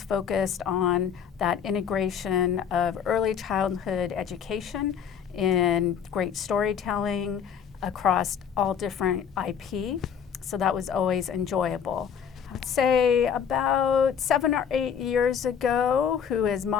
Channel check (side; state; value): right; quieter; 7.7 dB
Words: focused on that integration of early childhood education in great storytelling across all different IP. So that was always enjoyable. I'd say about 7 or 8 years ago, who is